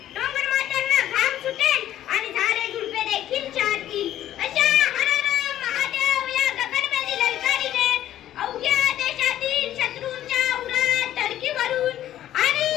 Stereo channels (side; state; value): right; quieter; 12.3 dB